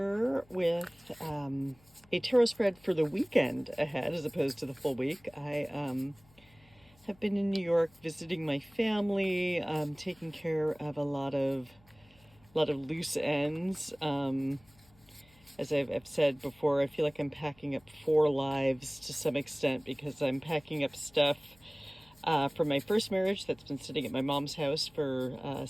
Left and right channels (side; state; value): left; noise; hum, 29 dB below the sound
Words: with a tarot spread for the weekend ahead as opposed to the full week. I have been in New York visiting my family, taking care of a lot of loose ends. As I've said before, I feel like I'm packing up four lives to some extent because I'm packing up stuff from my first marriage that's been sitting at my mom's house for